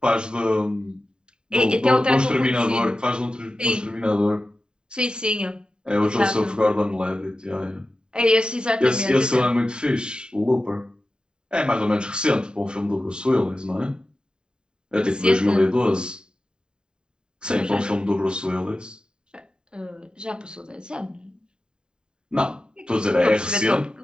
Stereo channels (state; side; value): late; left; 0.048 ms